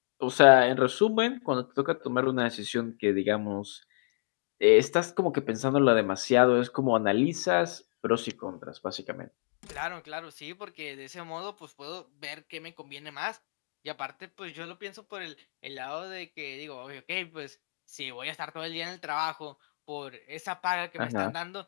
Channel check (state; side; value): silent; right; digital silence